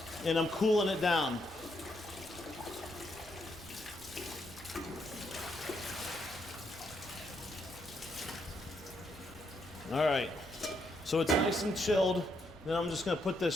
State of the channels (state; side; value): normal; both; correlation 0.77